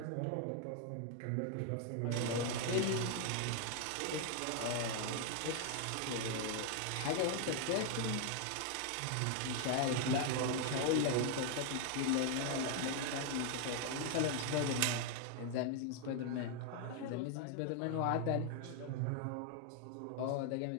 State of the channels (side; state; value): both; different; correlation 0.00